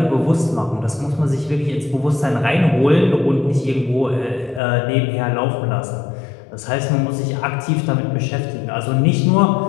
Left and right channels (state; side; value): drops out; right; at 4.6 s